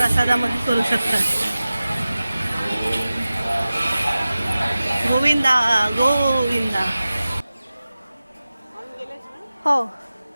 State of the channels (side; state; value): both; inverted; correlation -0.96